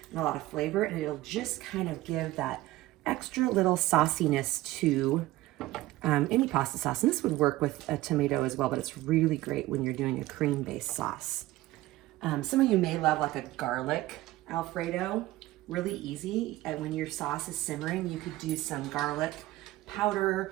and a lot of flavor, and it'll just kind of give that extra little sauciness to any pasta sauce. And this would work with a tomato as well, but it's really great when you're doing a cream-based sauce. Some of you may love like a garlic Alfredo, really easy. And when your sauce is simmering, you could do some garlic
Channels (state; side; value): quieter; left; 17.1 dB